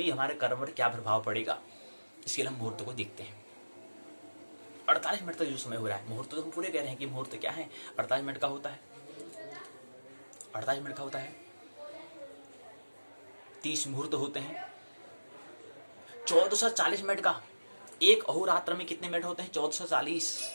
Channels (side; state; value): both; inverted; correlation -1.00